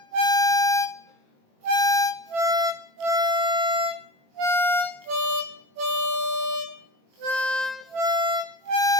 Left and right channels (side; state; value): left; late; 21 ms